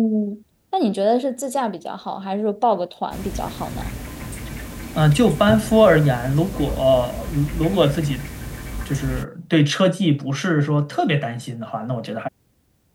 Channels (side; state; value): both; identical; correlation 1.00